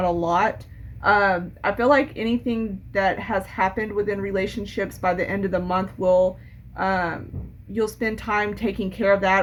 a lot. I feel like anything that has happened within relationships by the end of the month will um, you'll spend time taking care of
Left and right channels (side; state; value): both; identical; correlation 1.00